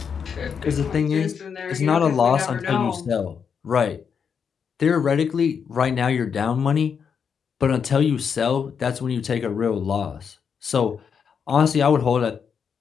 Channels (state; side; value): quieter; right; 6.8 dB